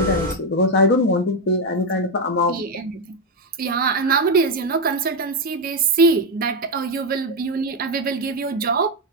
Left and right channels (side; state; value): both; normal; correlation 0.06